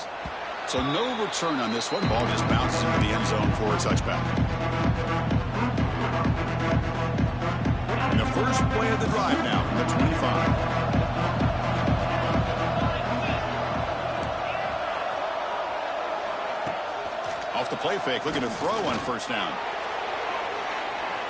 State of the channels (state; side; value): identical; both; correlation 1.00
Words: So no return on this one. Ball just bounces into the end zone for a touchback. And the first play of the drive now from the 25. Off the play fake, looking to throw on first down.